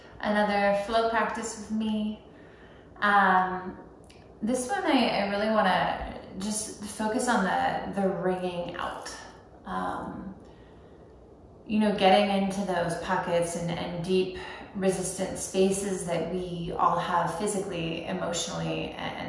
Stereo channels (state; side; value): identical; both; correlation 1.00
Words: another flow practice with me. This one I really want to just focus on the ringing out. Getting into those pockets and deep resistant spaces that we all have physically, emotionally,